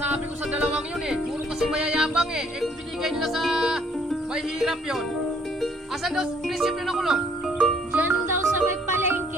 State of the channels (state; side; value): normal; both; correlation 0.63